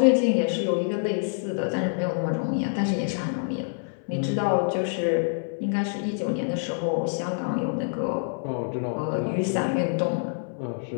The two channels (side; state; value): right; silent; 60 dB below the other